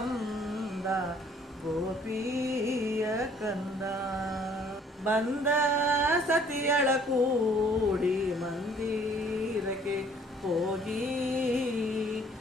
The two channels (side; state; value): both; normal; correlation 0.59